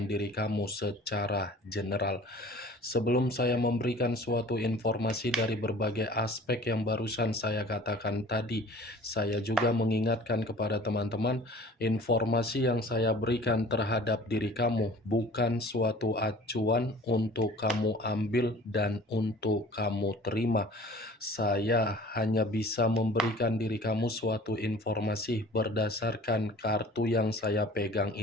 diri kamu secara general. Sebelum saya memberikan suatu informasi dari berbagai aspek yang barusan saya katakan tadi, saya juga mengingatkan kepada teman-teman, informasi yang saya berikan terhadap diri kamu bukan suatu acuan untuk kamu ambil dan untuk kamu terima. Saya hanya bisa memberikan diri kamu suatu informasi berdasarkan kartu yang saya pegang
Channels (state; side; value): normal; both; correlation 0.47